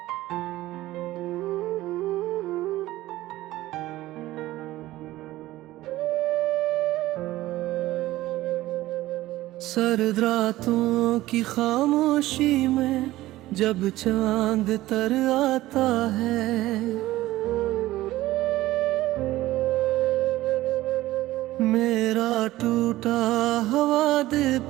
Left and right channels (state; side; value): quieter; left; 16.4 dB